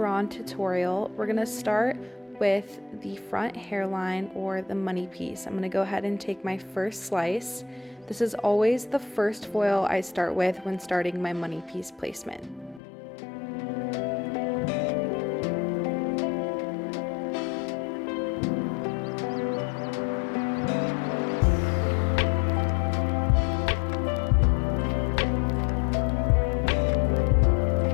tutorial. We're going to start with the front hairline or the money piece. I'm going to go ahead and take my first slice. This is always the first foil I start with when starting my money piece placement.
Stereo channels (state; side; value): drops out; right; at 12.8 s